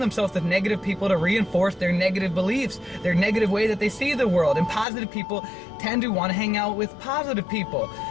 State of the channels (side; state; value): right; drops out; at 4.9 s